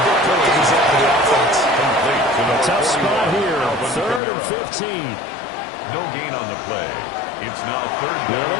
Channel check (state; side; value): drops out; right; at 4.2 s